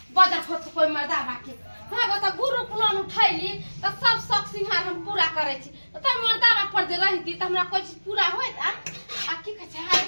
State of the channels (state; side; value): inverted; both; correlation -1.00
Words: बजर खसक कोई मर्दा बाके हाँ बता ग्रुप लोन उठैली तो सब शौक सिंहार हम पूरा करे छी, तो मर्दा पर जे रहती तो हमरा कोई चीज पूरा होत आ की कह छै